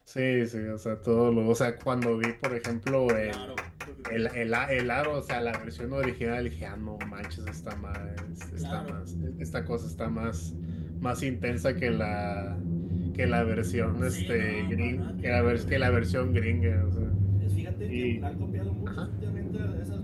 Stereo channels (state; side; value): identical; both; correlation 1.00